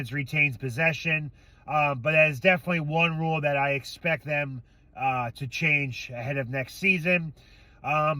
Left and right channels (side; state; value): both; identical; correlation 1.00